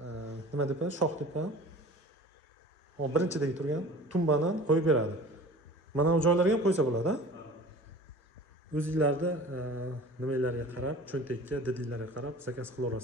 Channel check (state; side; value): normal; both; correlation 0.42